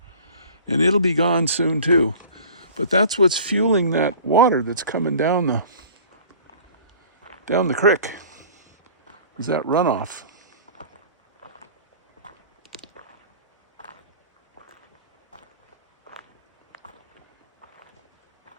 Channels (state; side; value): inverted; both; correlation -0.45